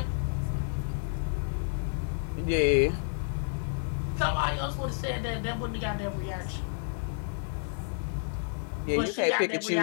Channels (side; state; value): right; silent; 55 dB below the other